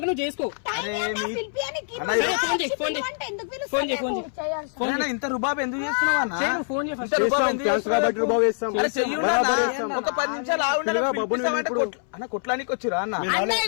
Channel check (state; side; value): silent; right; 62 dB below the other